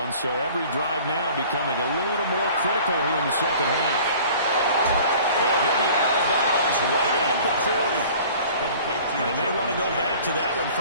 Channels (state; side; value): inverted; both; correlation -0.47